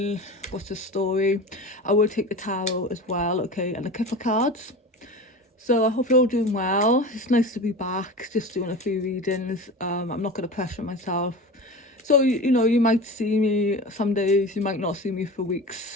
what's the story. I will take the tarot as well, okay, and the Kipper cards. So I hope you're all doing well. It's nice to be back, just doing a few readings. I'm not going to pressure myself. So, you might see me some days, you might not see me for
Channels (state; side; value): normal; both; correlation 0.31